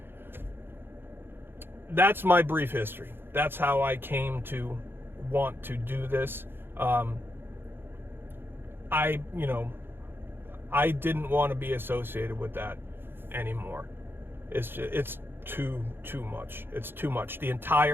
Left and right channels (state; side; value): late; left; 0.10 ms